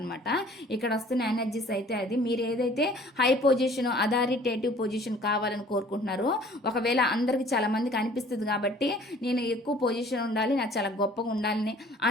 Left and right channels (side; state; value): both; normal; correlation 0.52